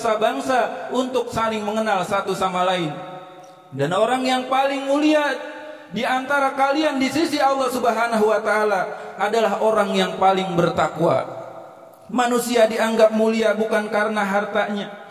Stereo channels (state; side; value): identical; both; correlation 1.00